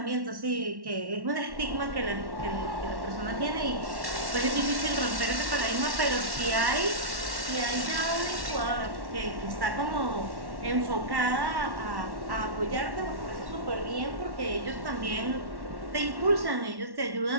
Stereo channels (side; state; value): left; late; 1.1 ms